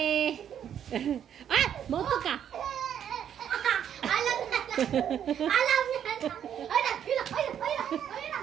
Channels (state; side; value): quieter; left; 9.3 dB